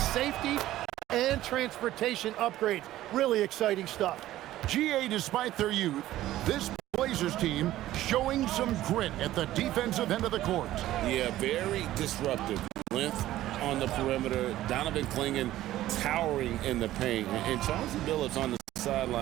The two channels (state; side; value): quieter; left; 14.5 dB